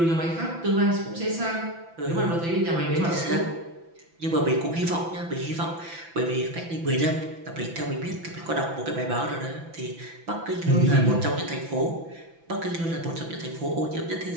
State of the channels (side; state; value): left; late; 6.0 ms